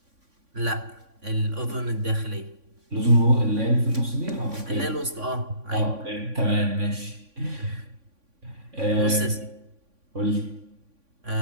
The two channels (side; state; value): left; late; 3.5 ms